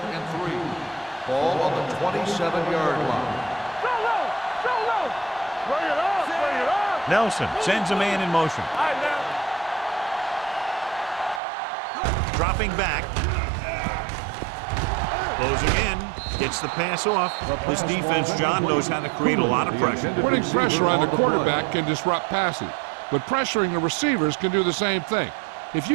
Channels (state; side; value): drops out; left; at 11.4 s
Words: 3. Ball on the 27-yard line. So low. Bring it up. Nelson sends a man in motion. All right, now. Dropping back. Closing in. Gets the pass off. This defense, John, knows how to create a lot of pressure. Putting pressure on the quarterback can disrupt passing, but pressuring the receivers can do the same thing. If